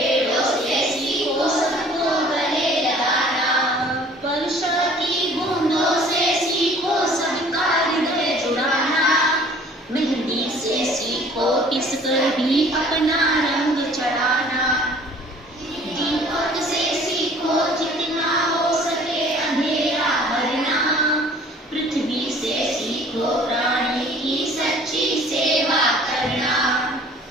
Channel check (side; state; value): both; normal; correlation 0.52